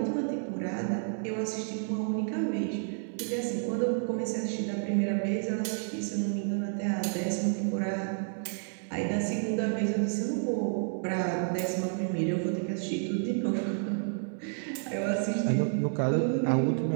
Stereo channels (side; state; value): left; silent; 58 dB below the other